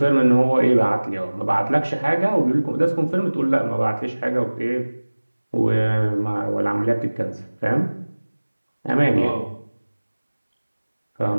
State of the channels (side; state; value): both; inverted; correlation -1.00